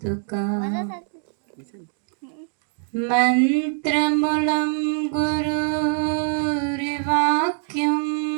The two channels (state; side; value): silent; left; digital silence